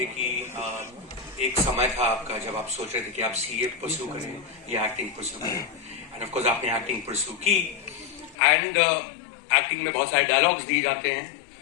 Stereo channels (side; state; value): right; drops out; at 8.3 s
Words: कि एक समय था आपका जब आप सोच रहे थे कि आप सीए परस्यू करें या एक्टिंग परस्यू करें, एंड ऑफ कोर्स आपने एक्टिंग परस्यू की। एंड एक्टिंग में बहुत सारे डायलॉग्स दिए जाते हैं